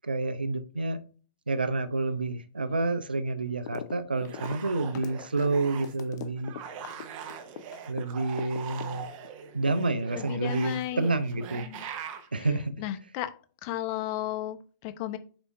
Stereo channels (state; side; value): inverted; both; correlation -0.71